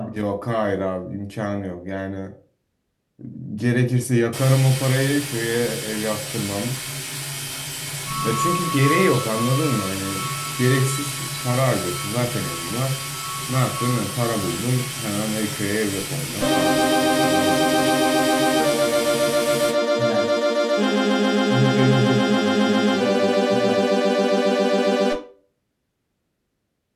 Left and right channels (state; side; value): identical; both; correlation 1.00